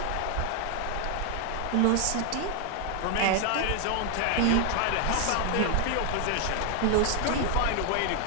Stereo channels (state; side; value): different; both; correlation 0.00